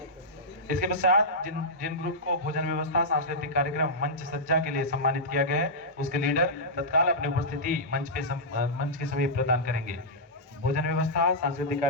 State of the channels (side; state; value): both; normal; correlation -0.11